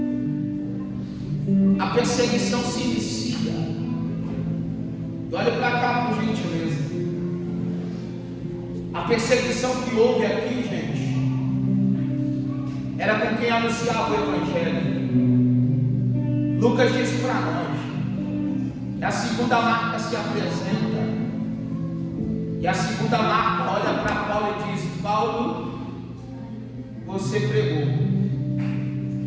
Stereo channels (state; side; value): identical; both; correlation 1.00